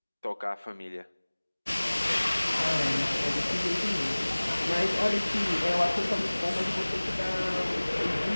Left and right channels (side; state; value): both; inverted; correlation -1.00